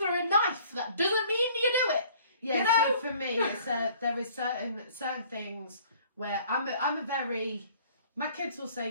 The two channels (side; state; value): both; inverted; correlation -0.55